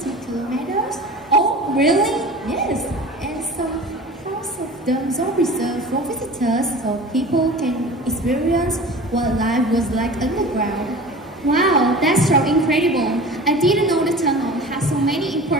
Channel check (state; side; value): normal; both; correlation 0.38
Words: kilometers? Oh, really? Yes, and some parts of them are reserved for visitors so people can experience what life was like underground. Wow, that's so incredible. I didn't know the tunnel has so many